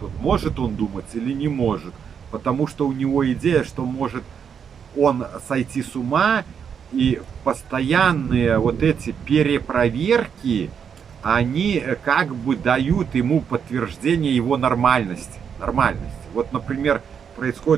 вот, может он думать или не может. Потому что у него идея, что может он сойти с ума, и постоянные вот эти перепроверки, они как бы дают ему подтверждение его нормальности. Нормальности. Вот, например,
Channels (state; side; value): quieter; left; 7.3 dB